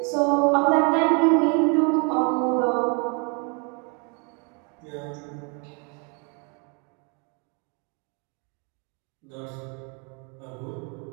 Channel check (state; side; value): quieter; left; 33.7 dB